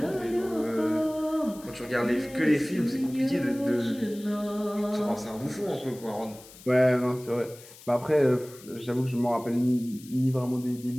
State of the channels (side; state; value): left; noise; hiss, 20 dB below the sound